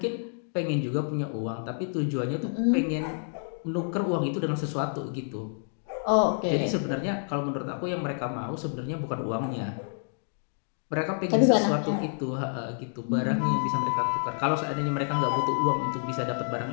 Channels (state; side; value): silent; right; 59 dB below the other